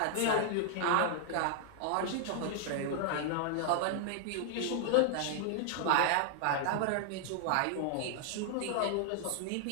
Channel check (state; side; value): different; both; correlation 0.00